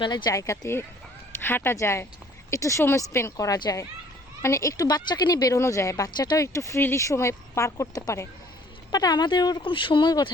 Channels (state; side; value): normal; both; correlation 0.57